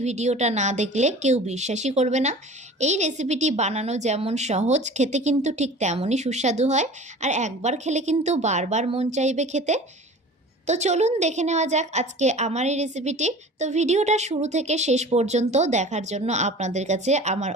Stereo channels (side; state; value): both; normal; correlation 0.41